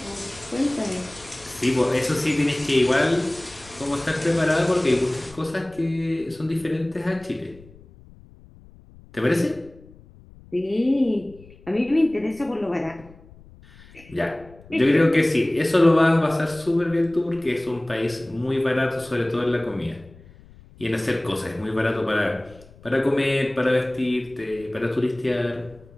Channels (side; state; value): left; noise; rumble, 23 dB below the sound